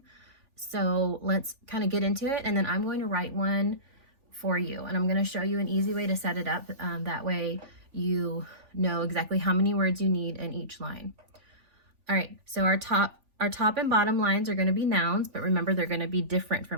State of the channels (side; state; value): left; late; 3.4 ms